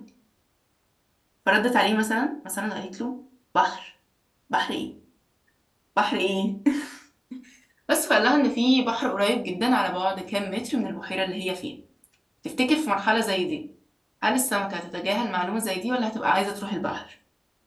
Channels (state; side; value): identical; both; correlation 1.00